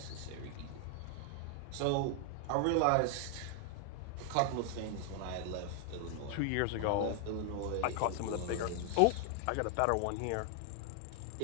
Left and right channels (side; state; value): both; different; correlation 0.00